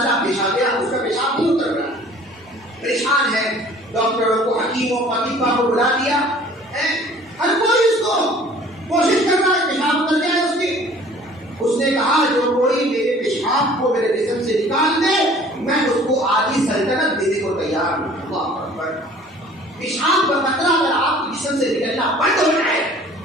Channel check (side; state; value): both; normal; correlation 0.50